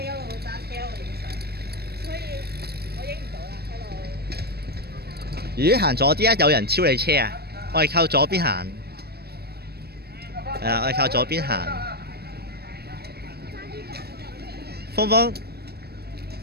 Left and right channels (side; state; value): left; late; 0.47 ms